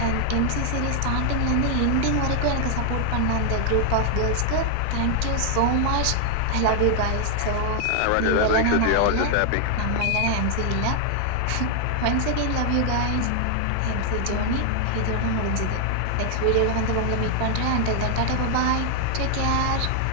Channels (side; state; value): both; different; correlation 0.00